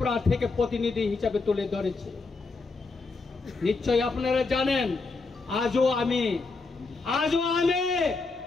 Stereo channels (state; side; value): quieter; right; 3.9 dB